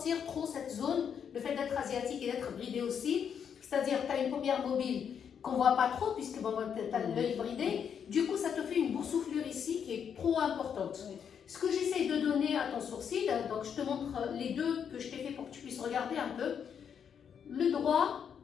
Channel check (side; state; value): right; quieter; 7.7 dB